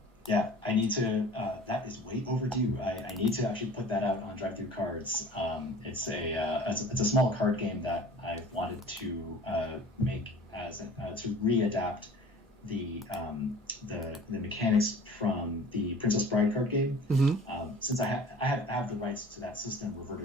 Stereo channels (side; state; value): both; normal; correlation 0.45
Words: I need to. That is way overdue. I need to actually put that out on Drive Through Cards. It's a small card game that I wanted to make to readapt the mechanics from the Princess Bride card game. Since I have the rights to that system